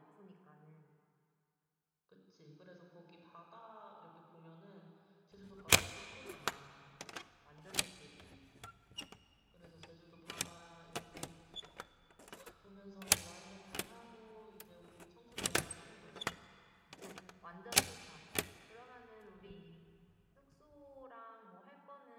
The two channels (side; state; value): both; identical; correlation 1.00